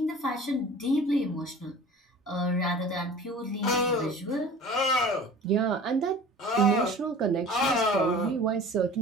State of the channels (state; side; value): normal; both; correlation 0.42